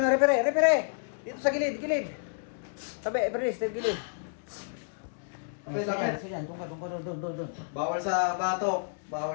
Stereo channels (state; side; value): silent; right; digital silence